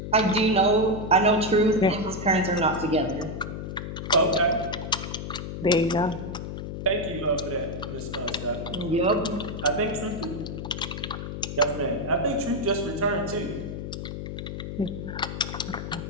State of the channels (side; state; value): left; noise; hum, 7 dB below the sound